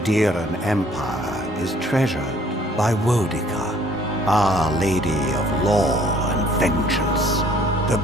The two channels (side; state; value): both; normal; correlation 0.59